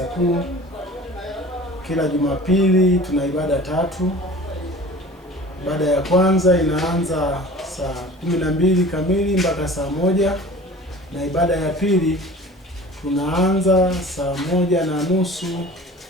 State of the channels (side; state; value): both; normal; correlation 0.42